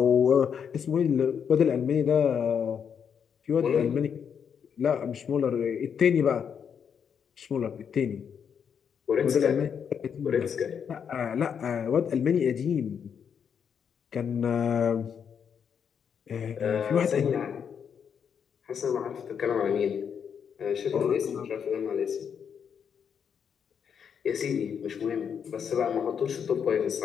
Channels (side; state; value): right; quieter; 7.4 dB